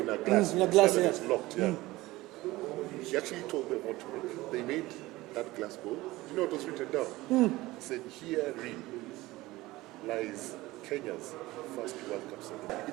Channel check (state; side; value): quieter; left; 18.9 dB